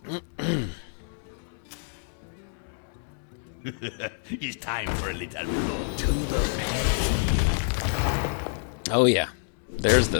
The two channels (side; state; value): right; silent; digital silence